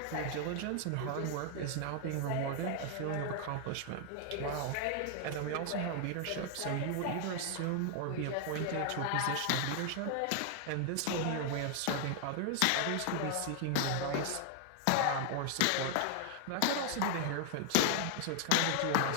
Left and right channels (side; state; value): both; different; correlation 0.00